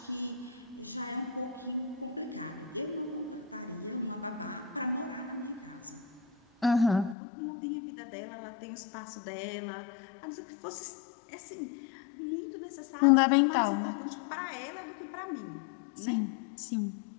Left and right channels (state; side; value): drops out; right; at 7.2 s